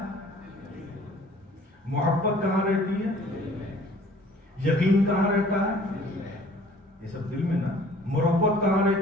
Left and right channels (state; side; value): normal; both; correlation 0.52